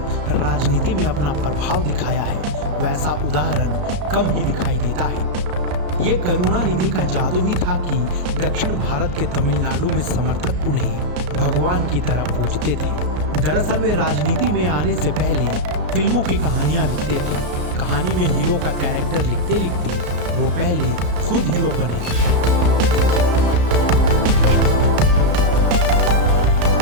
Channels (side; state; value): left; late; 34 ms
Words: राजनीति में अपना प्रभाव दिखाया है, वैसा उदाहरण कम ही दिखाई देता है। ये करुणानिधि का जादू ही था कि दक्षिण भारत के तमिलनाडु में समर्थक उन्हें भगवान की तरह पूजते थे। दरअसल वे राजनीति में आने से पहले फिल्मों की कहानियां लिखते थे। कहानी में हीरो का कैरेक्टर लिखते लिखते वो पहले खुद हीरो बने।